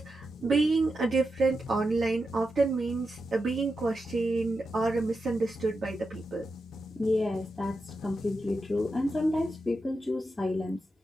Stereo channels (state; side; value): normal; both; correlation 0.88